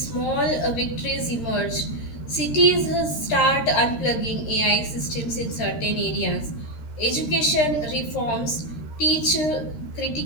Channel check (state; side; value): late; right; 13 ms